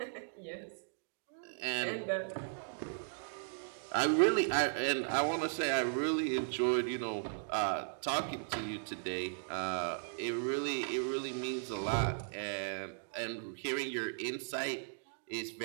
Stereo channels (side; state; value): left; silent; digital silence